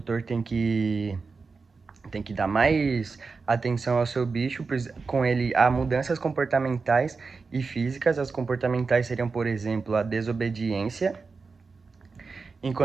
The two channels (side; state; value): left; quieter; 4.5 dB